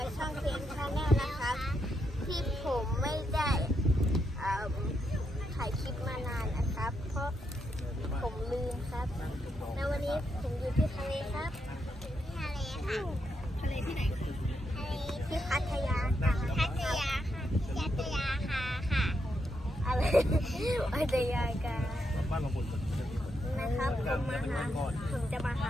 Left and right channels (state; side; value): normal; both; correlation 0.81